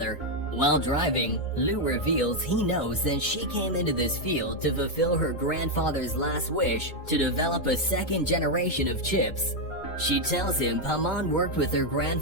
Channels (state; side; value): late; right; 2.2 ms